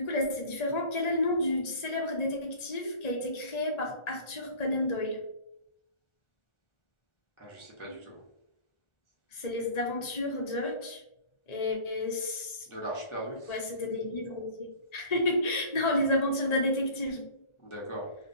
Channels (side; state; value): right; late; 1.4 ms